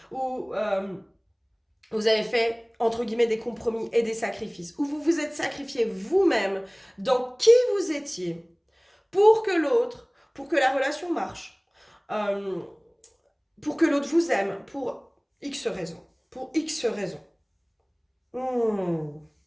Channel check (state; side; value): identical; both; correlation 1.00